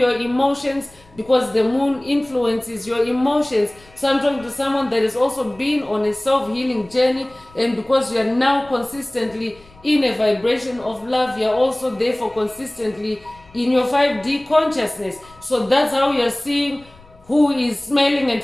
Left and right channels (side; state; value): left; noise; rumble, 26 dB below the sound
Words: emotions, because the moon influences your emotions. So I'm talking to someone that has also been on a self-healing journey, and because you are now consistently in a vibration of love, you are also therefore consistently in your 5D consciousness. So that's how you're seeing who is smelling and